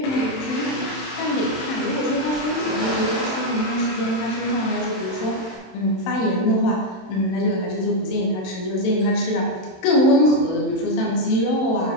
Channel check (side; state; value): right; late; 27 ms